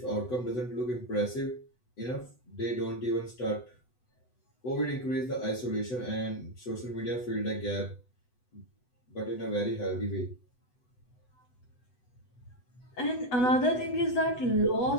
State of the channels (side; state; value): right; late; 8.0 ms